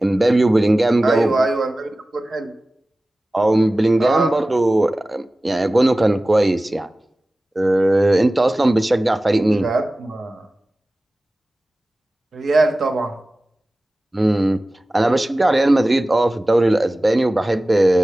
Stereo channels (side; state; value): both; normal; correlation 0.97